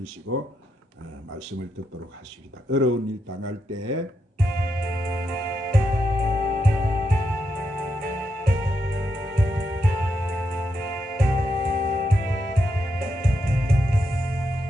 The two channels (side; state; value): both; normal; correlation 0.83